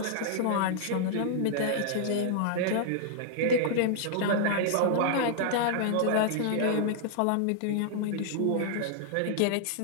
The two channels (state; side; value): different; both; correlation -0.01